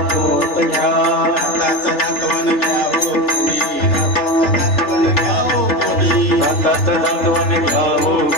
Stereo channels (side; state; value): right; late; 3.4 ms